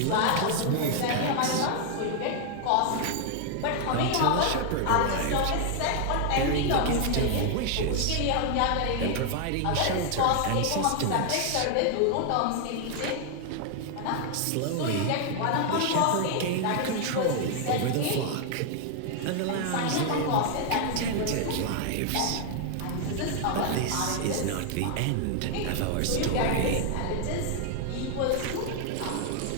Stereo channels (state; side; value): different; both; correlation 0.00